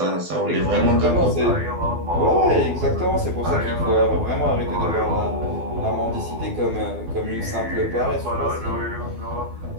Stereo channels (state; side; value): late; left; 12 ms